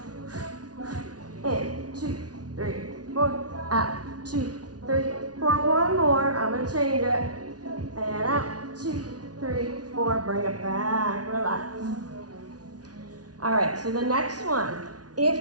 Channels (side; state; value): left; late; 0.69 ms